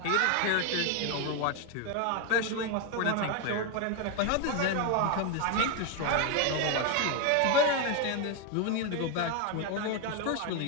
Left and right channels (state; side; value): different; both; correlation 0.01